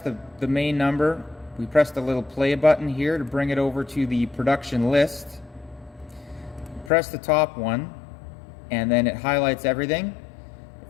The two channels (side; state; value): right; drops out; at 6.9 s